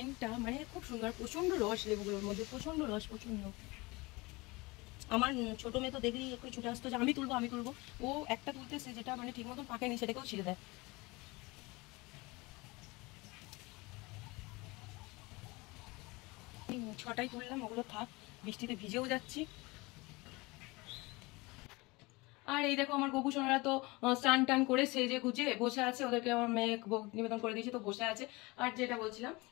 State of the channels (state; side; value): quieter; right; 24.0 dB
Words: মানে খুব সুন্দর, প্রচন্ড রস লেবুগুলোর মধ্যে, প্রচন্ড রস, প্রচন্ড। আমার ছোট মেয়ে তো দেখলি একটু ছুটে আসতো যে আমি তুলবো আমি তুলবো, ও একটা তুলতেছে যেটা মানে ঠিক মতন পাকেনি সেটাকেও ছিঁড়ে দেয়। ছটাই তুললাম, ওগুলো থাক, বৃষ্টিতে ভিজেও যাচ্ছি। আর এই দেখো আমার গবু সোনারা তো স্নান টান করে সেজে গুজে বসে আছে, ওদেরকে আমার মেয়ে ভোগ নিবেদন করে দিয়েছে, তো বসে আছে। আর যেটা বলছিলাম,